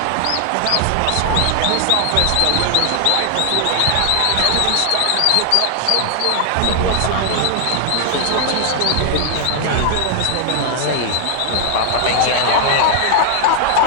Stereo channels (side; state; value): both; different; correlation 0.00